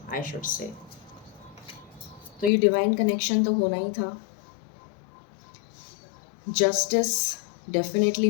I should say. तो ये डिवाइन कनेक्शन तो होना ही था. जस्टिस डेफिनेटली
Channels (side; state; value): right; drops out; at 2.5 s